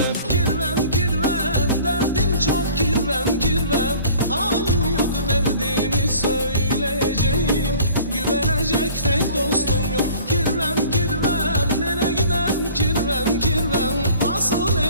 Kirvem kirvem derdim çok, kirvem kirvem halim yok, derdimi söyleyeceğim. Güvenecek tek dostum yok. Kirvem kirvem nereye gidem, kirvem kirvem nasıl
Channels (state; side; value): inverted; both; correlation -0.49